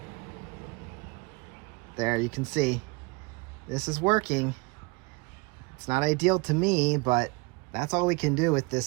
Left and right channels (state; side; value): quieter; left; 26.5 dB